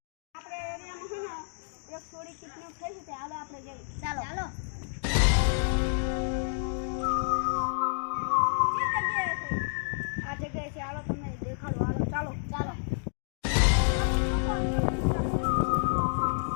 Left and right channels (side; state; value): right; silent; digital silence